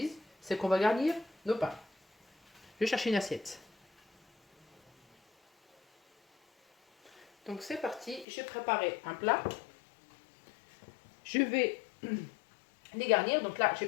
c'est qu'on va garnir nos pains. Je vais chercher une assiette. Donc c'est parti, j'ai préparé un plat. Je vais les garnir. Donc là, j'ai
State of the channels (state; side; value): drops out; right; at 8.2 s